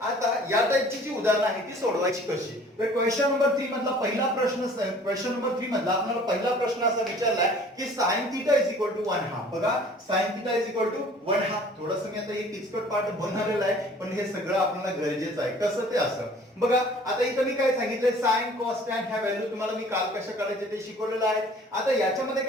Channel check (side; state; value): both; normal; correlation 0.51